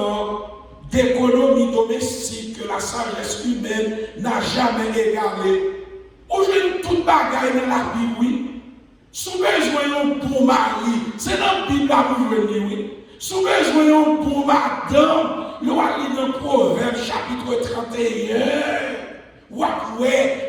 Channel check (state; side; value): identical; both; correlation 1.00